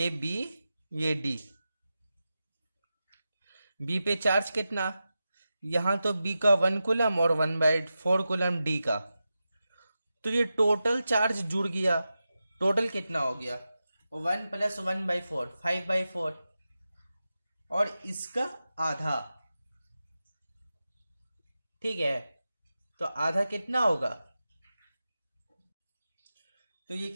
बी ये डी। बी पे चार्ज कितना, यहां तो बी का 1 कूलम और 1/4 कूलम डी का, तो ये टोटल चार्ज जुड़ गया। टोटल कितना हो गया, 1 + 1/4 5/4 और इसका आधा, ठीक है। तो आधा कितना होगा, तो ये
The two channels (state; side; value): inverted; both; correlation -0.92